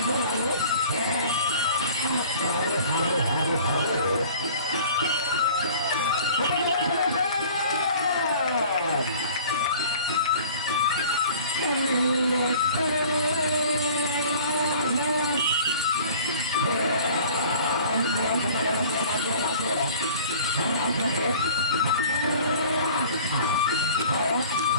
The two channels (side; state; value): both; inverted; correlation -0.46